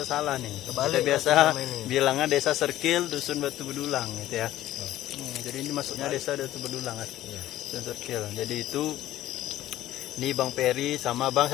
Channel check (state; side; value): quieter; right; 14.1 dB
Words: salah nih. Kebalik Kita biasa selama ini. bilangnya desa Circle, dusun Batu Bedulang gitu ya. Jadi ini masuknya desa Batu Bedulang kan. Iya. Dusun Circle. Jadi itu ini Bang Peri sama Bang